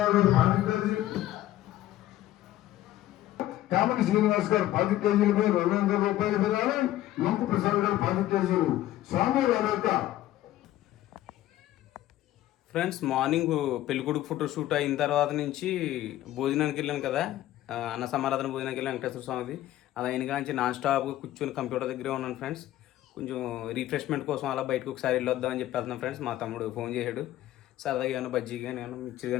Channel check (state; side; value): quieter; right; 14.2 dB